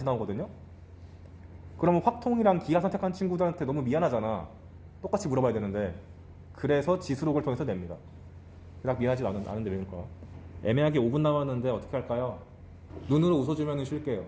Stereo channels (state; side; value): identical; both; correlation 1.00